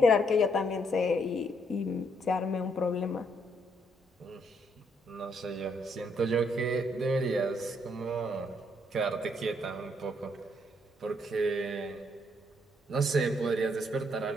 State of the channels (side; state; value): both; normal; correlation 0.72